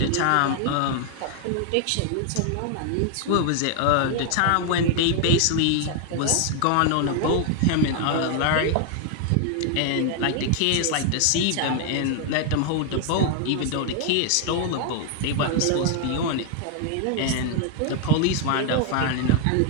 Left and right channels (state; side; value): different; both; correlation 0.00